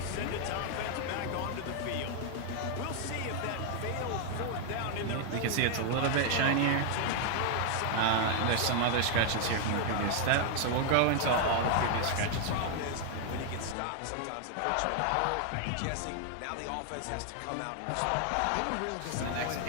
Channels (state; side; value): different; both; correlation 0.00